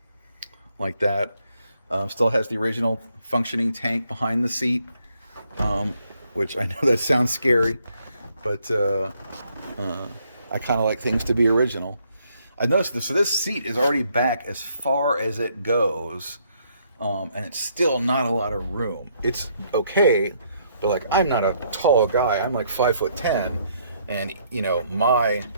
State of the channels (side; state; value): both; inverted; correlation -0.71